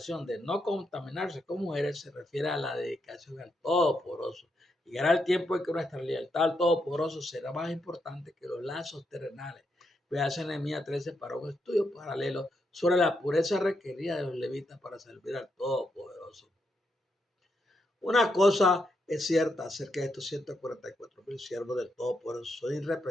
de no contaminarse con mujeres se refiere a la dedicación al Todopoderoso. Llegará el tiempo en que nuestra lealtad al Todopoderoso será más importante que los lazos terrenales. Veas en Nehemías 13 para un estudio paralelo sobre la pureza requerida de los levitas para servir al Todopoderoso. Una cosa es cierta acerca de estos 144,000 siervos del Todopoderoso, son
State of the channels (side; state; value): both; normal; correlation 0.81